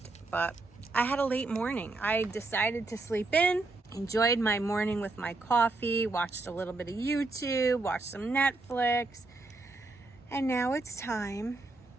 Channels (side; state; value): left; quieter; 3.3 dB